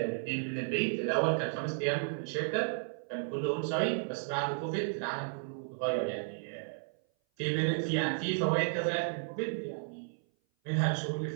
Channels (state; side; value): silent; left; 56 dB below the other